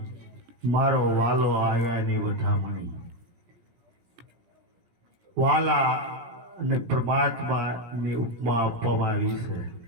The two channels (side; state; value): left; late; 17 ms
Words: મારો વાલો આવ્યાની વધામણી. વાલા અને પરમાત્માની ઉપમા આપવામાં આવી છે.